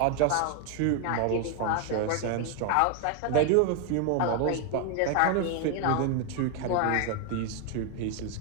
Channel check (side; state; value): both; different; correlation 0.00